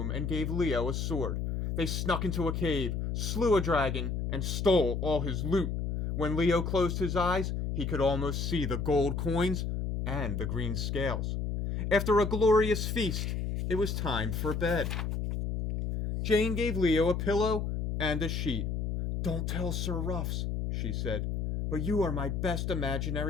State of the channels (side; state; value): left; noise; hum, 1 dB below the sound